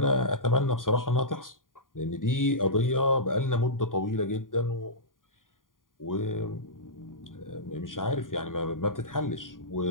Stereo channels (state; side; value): late; right; 0.90 ms